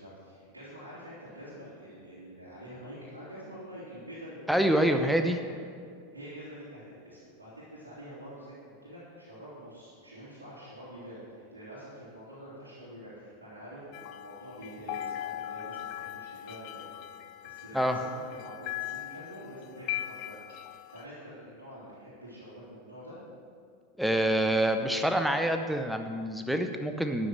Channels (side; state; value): both; normal; correlation 0.64